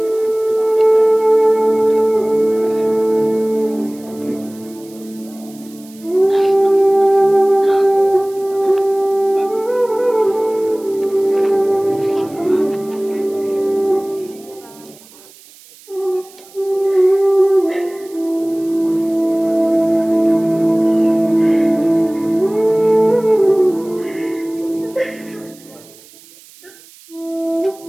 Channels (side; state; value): right; noise; hiss, 24 dB below the sound